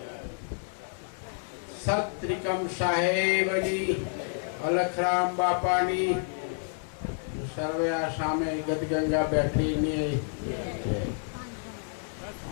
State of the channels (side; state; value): right; silent; digital silence